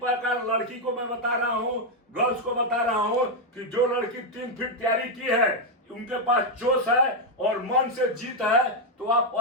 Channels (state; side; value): normal; both; correlation 0.01